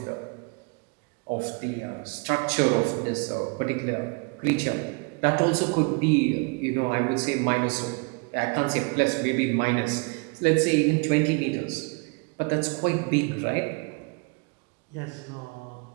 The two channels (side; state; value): left; quieter; 31.8 dB